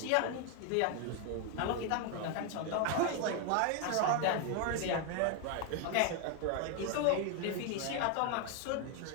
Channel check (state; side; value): different; both; correlation 0.01